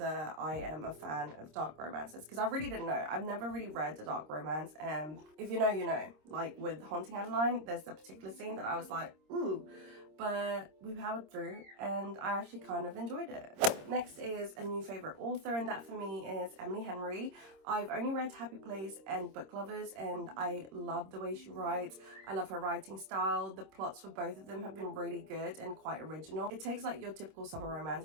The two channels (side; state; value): left; late; 26 ms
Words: I am a fan of dark romances because I really didn't know. I've never really read a dark romance, and if you know, you know. Like with Haunting Adeline, there's a particular scene that I was like, ooh. but we powered through and I actually kind of enjoyed it. Next is a new favorite author, and that for me is Emily Henry. I've only read Happy Place and Book Lovers, and I love the way she writes. I love her writing style. The plots for both of them have been really good and quite original. It takes like your typical summer romance